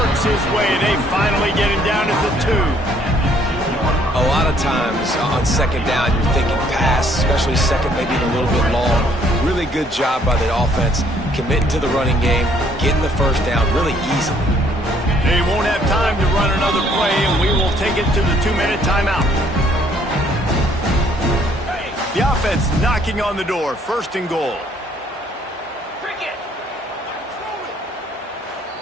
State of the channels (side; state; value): both; normal; correlation 0.64